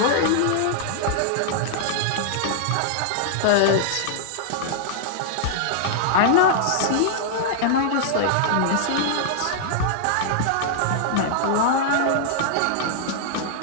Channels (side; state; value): both; different; correlation -0.01